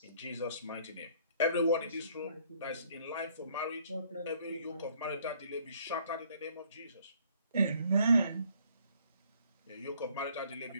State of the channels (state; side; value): inverted; both; correlation -0.62